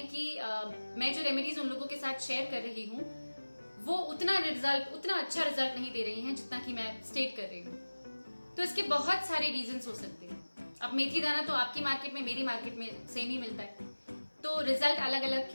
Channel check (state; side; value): inverted; both; correlation -1.00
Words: कि मैं जो रेमेडीज उन लोगों के साथ शेयर कर रही हूँ वो उतना अच्छा रिजल्ट नहीं दे रही हैं जितना कि मैं स्टेट कर रही हूँ। तो इसके बहुत सारे रीजंस हो सकते हैं। अब मेथी दाना तो आपकी मार्केट में मेरी मार्केट में सेम ही मिलता है, तो रिजल्ट अलग अलग